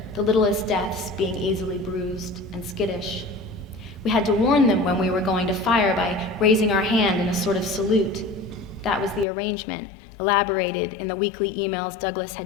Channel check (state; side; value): drops out; right; at 9.2 s